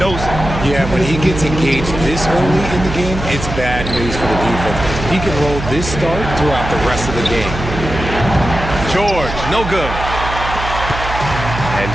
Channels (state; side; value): noise; right; hum, 7 dB below the sound